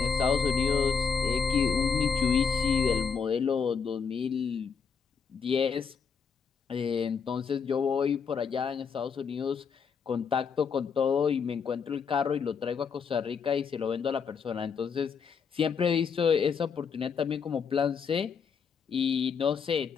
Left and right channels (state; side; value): quieter; right; 6.1 dB